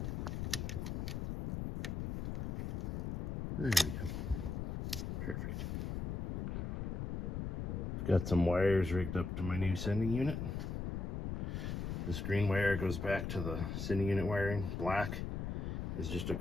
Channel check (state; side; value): noise; left; rumble, 3 dB below the sound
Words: There we go. Perfect. Got some wires rigged up to my new sending unit. This green wire goes back to the sending unit wiring. Black is just a